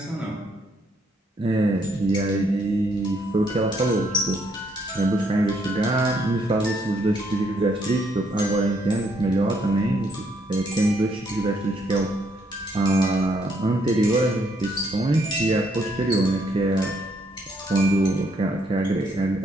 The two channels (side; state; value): both; normal; correlation 0.72